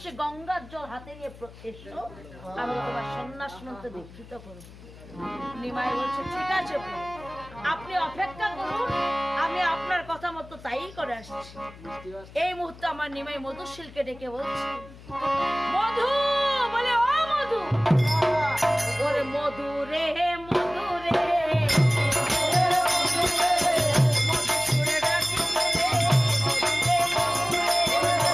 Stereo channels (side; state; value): left; noise; hum, 19 dB below the sound